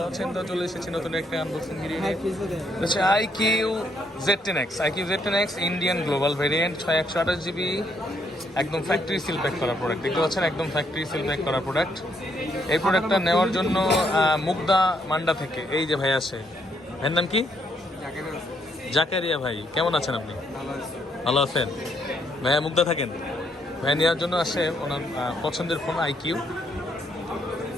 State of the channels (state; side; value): normal; both; correlation 0.72